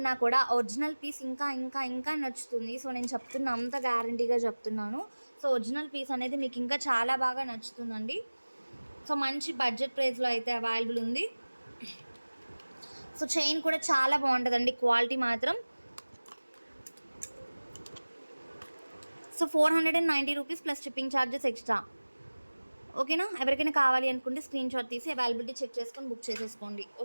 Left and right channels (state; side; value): inverted; both; correlation -1.00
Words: కూడా ఒరిజినల్ పీస్ ఇంకా ఇంకా ఇంకా నచ్చుతుంది. సో నేను చెప్తున్నా, అంత గ్యారంటీగా చెప్తున్నాను. సో ఒరిజినల్ పీస్ అనేది మీకు ఇంకా చాలా బాగా నచ్చుతుందండి. సో మంచి బడ్జెట్ ప్రైస్లో అయితే అవైలబుల్ ఉంది. సో చైన్ కూడా చాలా బాగుంటుందండి, క్వాలిటీ మాత్రం. So 490 rupees plus shipping charges extra. ఓకేనా. ఎవరికైనా కావాలి అనుకుంటే స్క్రీన్ షాట్ తీసి అవైలబిలిటీ చెక్ చేసుకొని బుక్ చేసేసుకోండి.